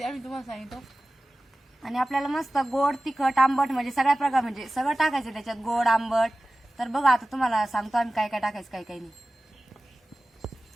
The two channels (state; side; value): normal; both; correlation 0.96